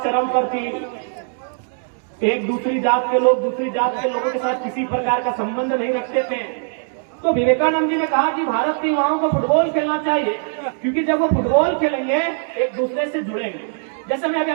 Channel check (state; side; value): silent; left; digital silence